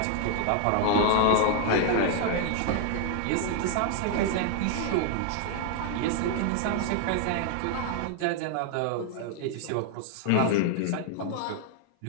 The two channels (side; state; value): both; different; correlation 0.00